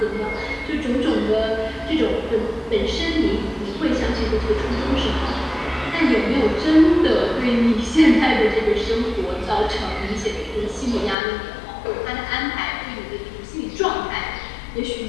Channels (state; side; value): drops out; right; at 11.2 s